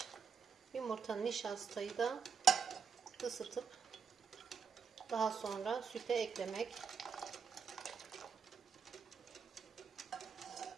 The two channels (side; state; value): left; quieter; 6.3 dB